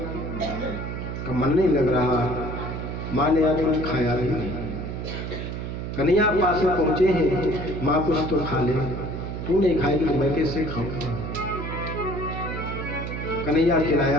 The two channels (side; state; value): right; noise; hum, 5 dB below the sound